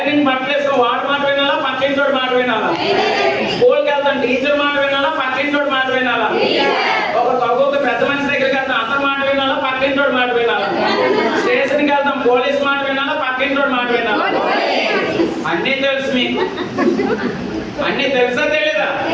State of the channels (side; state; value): both; identical; correlation 1.00